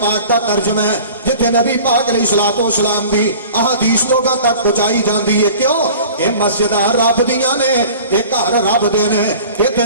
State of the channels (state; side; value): inverted; both; correlation -0.43